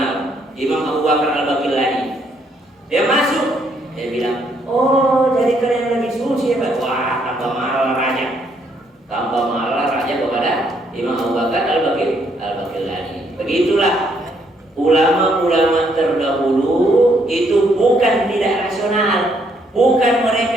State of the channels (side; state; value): both; normal; correlation 0.71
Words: Imam Abu Bakar Al-Baqillani dia masuk, dia bilang, oh jadi kalian lebih suci ya Pak? Wah, tambah marah raja kepada Imam Abu Bakar Al-Baqillani. Begitulah ulama-ulama terdahulu itu bukan tidak rasional, bukan